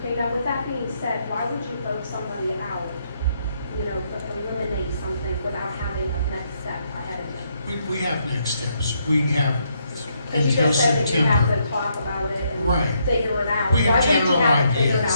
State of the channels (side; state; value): both; inverted; correlation -0.75